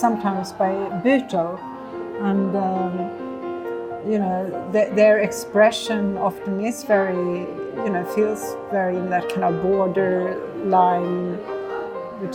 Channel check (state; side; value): identical; both; correlation 1.00